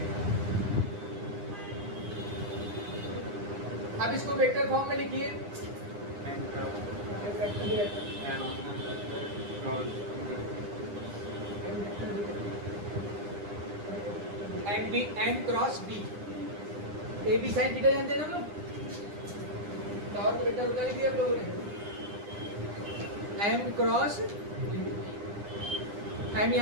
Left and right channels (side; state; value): left; late; 9.9 ms